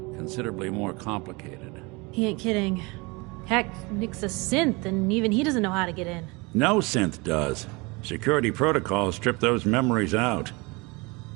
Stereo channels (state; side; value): quieter; left; 26.4 dB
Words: considerably more complicated. He ain't kidding. Heck, Nick's a synth, and even he doesn't know how to get in. No synth does. Security protocols strip those memories out.